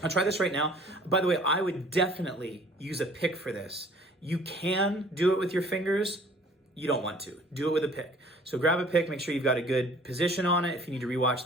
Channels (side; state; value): both; normal; correlation 0.53